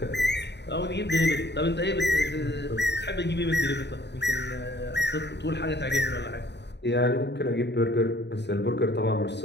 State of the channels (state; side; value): late; right; 0.50 ms